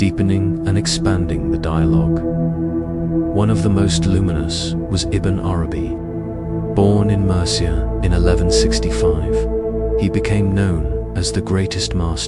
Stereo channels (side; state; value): both; identical; correlation 1.00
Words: and expanding the dialogue. One of the most luminous was Ibn Arabi. Born in Murcia in 1165, he became known as the greatest